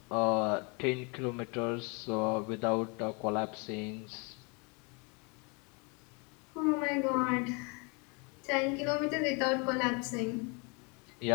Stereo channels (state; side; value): quieter; right; 31.8 dB